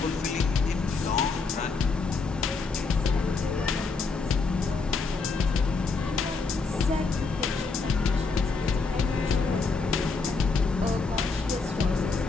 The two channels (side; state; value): right; quieter; 4.3 dB